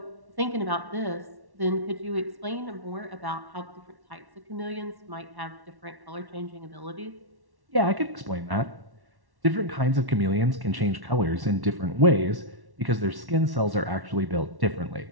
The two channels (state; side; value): late; left; 1.1 ms